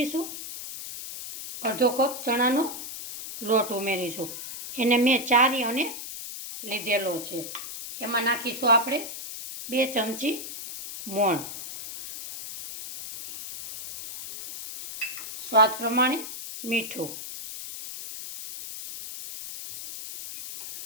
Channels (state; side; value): noise; left; hiss, 9 dB below the sound